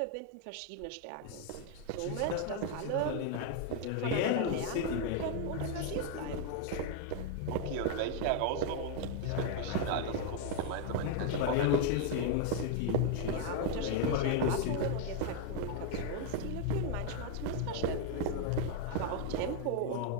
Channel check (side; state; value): both; different; correlation 0.00